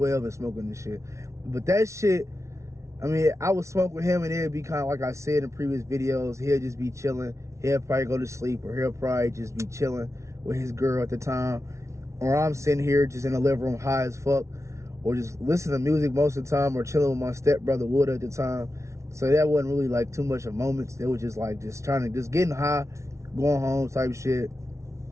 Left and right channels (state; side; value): late; left; 0.14 ms